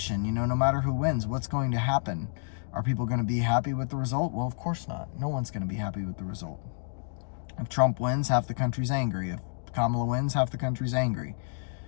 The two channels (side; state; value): right; silent; digital silence